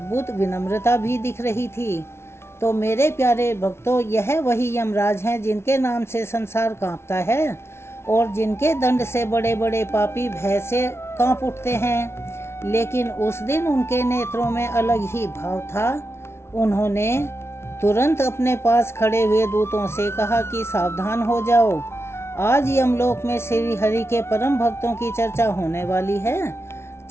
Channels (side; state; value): right; late; 0.12 ms